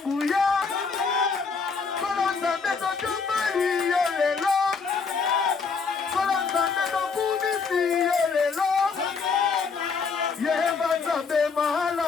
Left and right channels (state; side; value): quieter; right; 5.2 dB